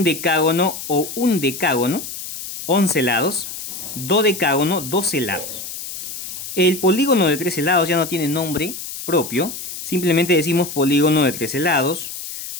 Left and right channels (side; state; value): left; noise; hiss, 9 dB below the sound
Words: o undecágono, 11 lados. Dodecágono, 12 lados. El polígono de 13 lados ya no tiene nombre propio. Simplemente decimos polígono de 13 lados,